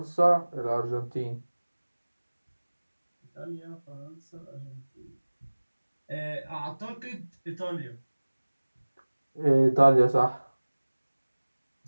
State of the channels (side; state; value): both; inverted; correlation -1.00